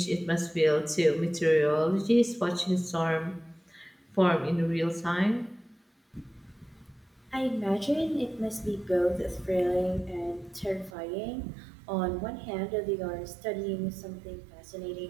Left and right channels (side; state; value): left; drops out; at 11.0 s